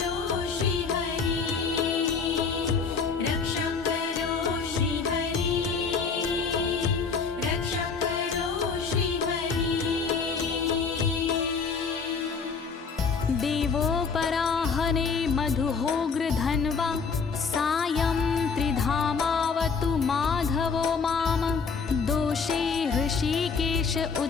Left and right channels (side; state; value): right; quieter; 5.3 dB